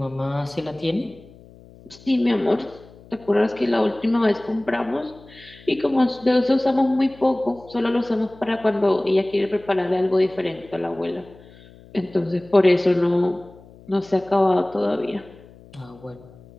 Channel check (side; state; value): left; noise; hum, 23 dB below the sound